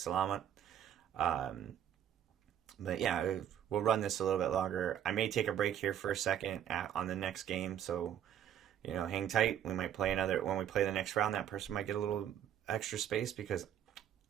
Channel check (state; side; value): quieter; left; 10.1 dB